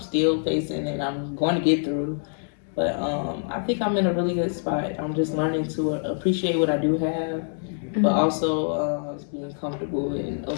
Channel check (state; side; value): silent; right; digital silence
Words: facing and I'm going to get through. But I think I'm in a really good spot. I'm just learning to appreciate what I do have, but also being comfortable and